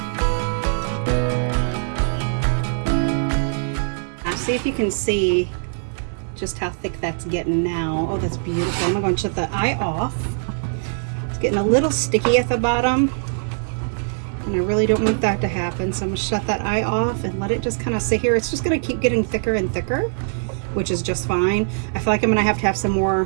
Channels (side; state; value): left; silent; digital silence